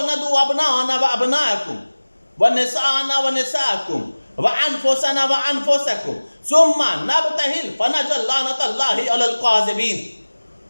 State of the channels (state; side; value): inverted; both; correlation -1.00